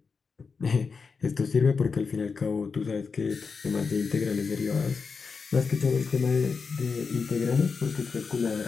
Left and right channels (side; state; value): right; quieter; 5.1 dB